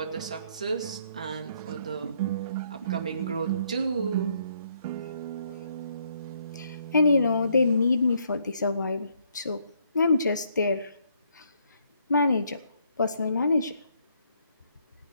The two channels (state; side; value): inverted; both; correlation -0.70